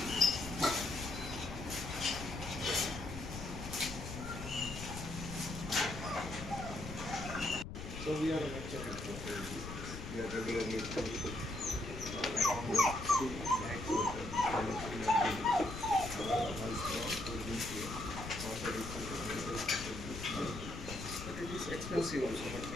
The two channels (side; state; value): left; noise; rumble, 8 dB below the sound